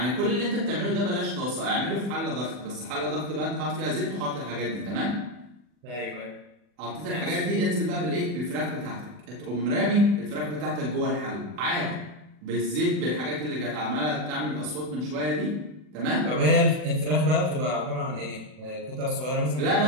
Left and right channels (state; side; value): late; left; 40 ms